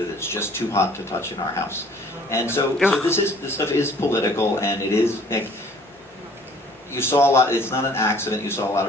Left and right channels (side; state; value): both; normal; correlation 0.54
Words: that it's just too hot to touch in our House. And so this stuff is political, and it is. You saw a lot. It's not an accident. You saw a lot